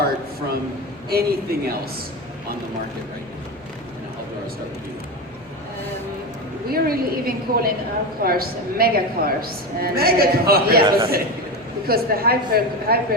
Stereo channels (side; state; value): left; noise; hum, 30 dB below the sound